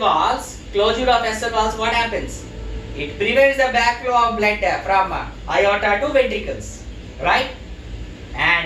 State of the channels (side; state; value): both; identical; correlation 1.00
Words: what happens? It prevents the backflow of blood from aorta to ventricles, right?